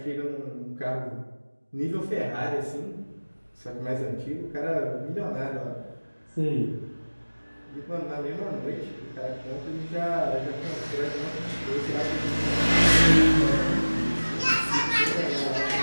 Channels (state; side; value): inverted; both; correlation -1.00